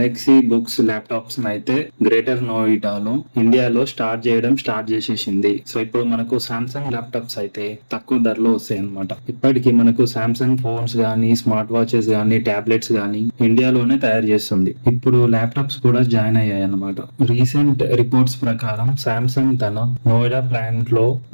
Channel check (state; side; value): inverted; both; correlation -1.00